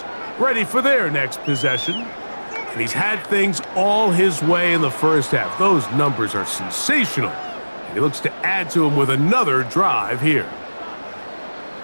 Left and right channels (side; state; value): both; inverted; correlation -1.00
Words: ready for their next possession. And he's had things all his way in the first half. Those numbers are sensational. And he looks to add to them with another drive here.